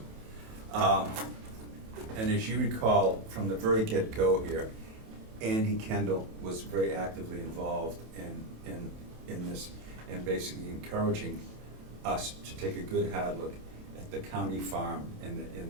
And as you recall, from the very get-go here, Andy Kendall was very actively involved in this, and basically encouraging us to take a good hard look at the county farm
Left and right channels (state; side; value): late; left; 27 ms